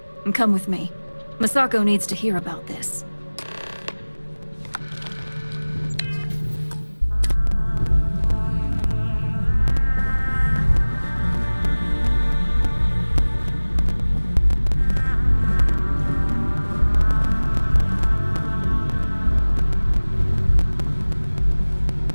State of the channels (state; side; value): inverted; both; correlation -1.00